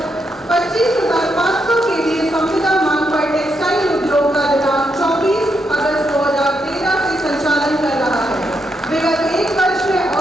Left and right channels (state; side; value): normal; both; correlation 0.80